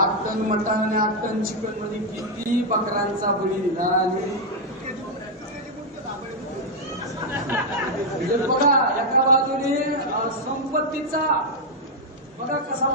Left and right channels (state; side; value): normal; both; correlation -0.01